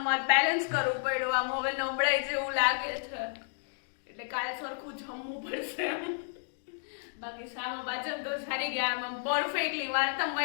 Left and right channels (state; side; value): silent; right; digital silence